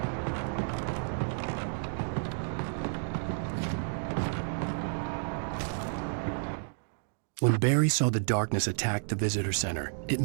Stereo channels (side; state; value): left; silent; digital silence